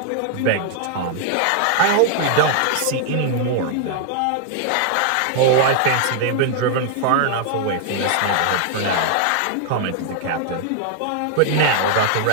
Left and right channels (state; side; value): different; both; correlation 0.00